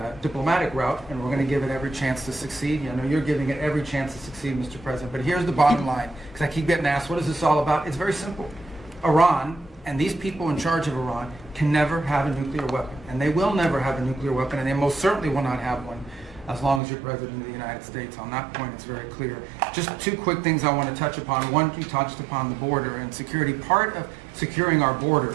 diplomatic route, and we're going to give it every chance to succeed. You know, you're giving it every chance to succeed, Mr. President. But here's the bottom line, because I keep getting asked, what is this all about? It's very simple. Iran and these people in charge of Iran can never have a nuclear weapon, and they will never have a nuclear weapon, and they most certainly will not have one as long as you're President of the United States. On that point, it's very clear. Just two quick things I want to touch upon. One, you touched upon the border and security. Part of securing our border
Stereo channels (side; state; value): left; drops out; at 16.8 s